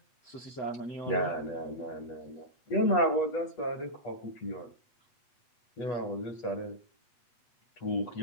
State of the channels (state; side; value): late; right; 8.2 ms